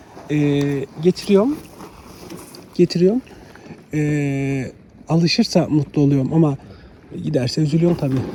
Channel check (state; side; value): identical; both; correlation 1.00